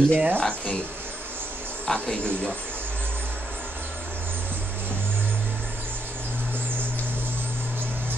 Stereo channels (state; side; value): normal; both; correlation 0.78